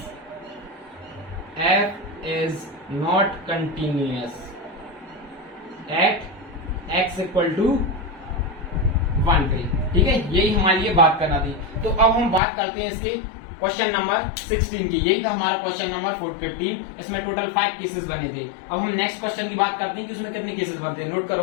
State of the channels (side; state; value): right; drops out; at 12.4 s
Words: f is not continuous at x equal to 1 पे। ठीक है, यही हमारे लिए बात करना थी। तो अब हम बात करते हैं इसके क्वेश्चन नंबर 16 की। यही था हमारा क्वेश्चन नंबर 15। इसमें टोटल 5 केसेस बने थे। अब हम नेक्स्ट क्वेश्चन की बात करते हैं कि उसमें कितने केसेस बनते हैं। नोट